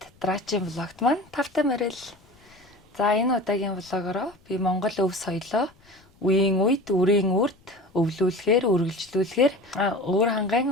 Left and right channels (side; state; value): left; noise; rumble, 30 dB below the sound